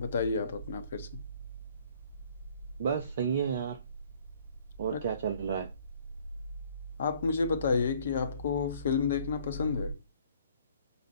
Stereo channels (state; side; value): inverted; both; correlation -0.58